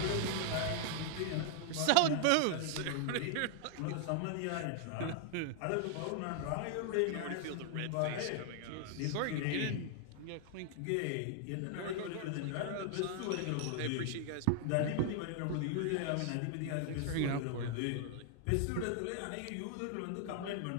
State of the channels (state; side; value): different; both; correlation 0.00